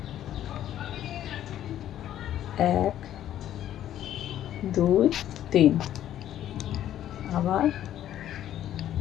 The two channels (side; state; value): right; quieter; 11.7 dB